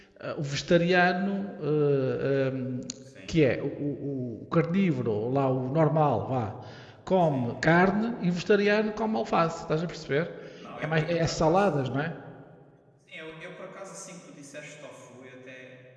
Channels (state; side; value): identical; both; correlation 1.00